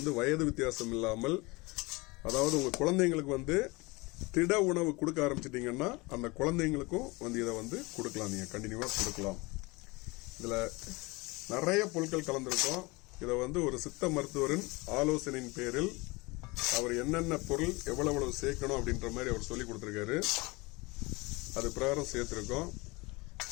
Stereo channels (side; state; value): right; quieter; 24.6 dB